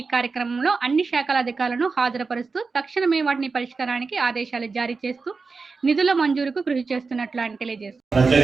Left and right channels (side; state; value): left; quieter; 4.4 dB